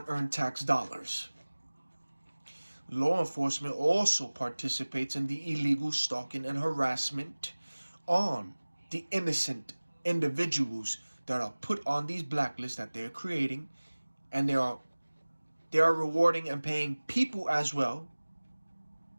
tax dollars. Law enforcement also participates in the illegal stalking and harassment on the innocent individuals that are put on these blacklists that they're creating, and they are rewarding and paying people as well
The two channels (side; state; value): both; inverted; correlation -1.00